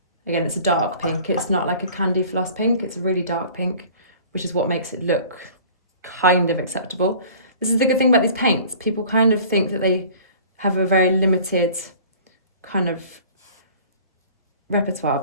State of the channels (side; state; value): both; inverted; correlation -0.46